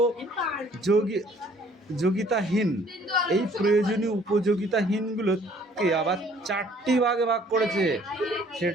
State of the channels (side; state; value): both; normal; correlation 0.58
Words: উপযোগিতাহীন, এই প্রয়োজনীয় উপযোগিতাহীনগুলোকে আবার 4টি ভাগে ভাগ করেছে।